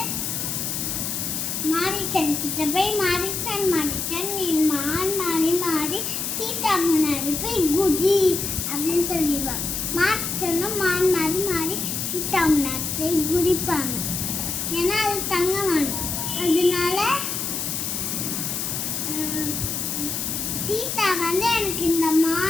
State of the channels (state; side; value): noise; left; hiss, 2 dB below the sound